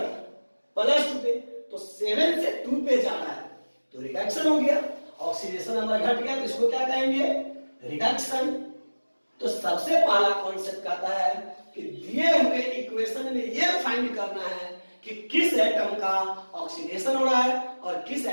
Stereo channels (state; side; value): inverted; both; correlation -1.00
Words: +2 पे, तो 7 से 2 पे जा रहा है तो रिडक्शन हो गया, ऑक्सीडेशन नंबर घट गया, तो इसको क्या कहेंगे रिडक्शन। तो सबसे पहला कॉन्सेप्ट कहता है कि दिए हुए इक्वेशन में ये फाइंड करना है कि किस एटम का ऑक्सीडेशन हो रहा है और किस